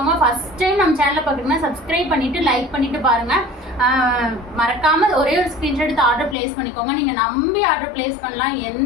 ஃபர்ஸ்ட் டைம் நம்ம சேனலை பார்க்குறீங்கன்னா சப்ஸ்கிரைப் பண்ணிட்டு லைக் பண்ணிட்டு பாருங்க. மறக்காம ஒரே ஒரு ஸ்கிரீன்ஷாட் எடுத்து ஆர்டர் பிளேஸ் பண்ணிக்கோங்க. நீங்க நம்பி ஆர்டர் பிளேஸ் பண்ணலாம்,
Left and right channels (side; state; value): right; drops out; at 6.4 s